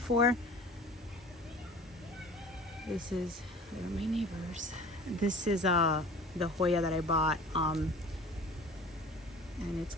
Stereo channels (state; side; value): normal; both; correlation 0.42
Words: This is, where are my neighbors? This is the Hoya that I bought, and it's